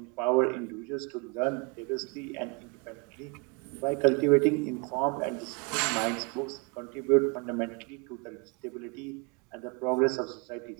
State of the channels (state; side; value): quieter; left; 31.6 dB